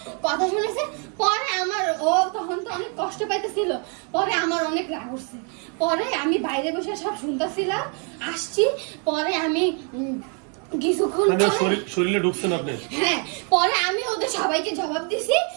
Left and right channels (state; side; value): quieter; left; 38.9 dB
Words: কথা শুনেছে, পরে আমার ও তখন তো অনেক কষ্ট পাইতেছিল, পরে আমার অনেক রাগ উঠছে। পরে আমি বাইরে বসে সব শুনতেছিলাম, আসছি। পরে আমি কিছুক্ষণ শরীরে ঢুকছেন আপনি? হ্যাঁ, পরে আমি ওদের সবাইকে জবাব দিছি,